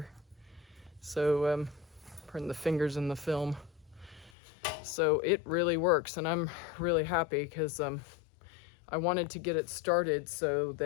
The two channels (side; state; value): right; drops out; at 4.3 s